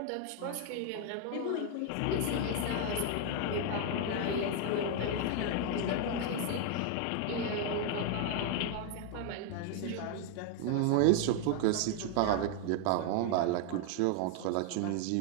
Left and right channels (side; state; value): both; different; correlation 0.00